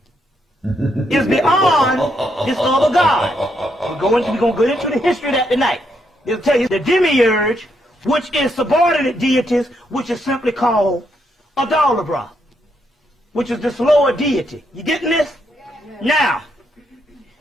is beyond this other God. We're going to go into the history of that tonight. It'll tell you the demiurge, which is subordinate deities, which is simply called Adalabra, which is this lower deity. You getting this? Now,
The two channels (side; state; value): both; normal; correlation 0.77